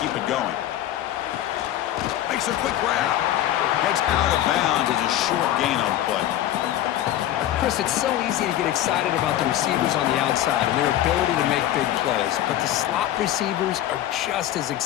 it going? Makes a quick grab. Heads out of bounds as a short gain on the play. Chris, it's so easy to get excited about the receivers on the outside and their ability to make big plays, but the slot receivers are just as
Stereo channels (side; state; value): right; quieter; 12.8 dB